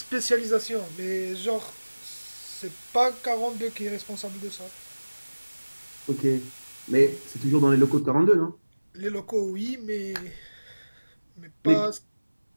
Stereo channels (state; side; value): inverted; both; correlation -1.00